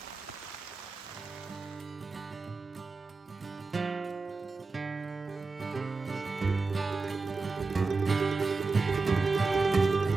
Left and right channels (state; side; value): quieter; left; 4.0 dB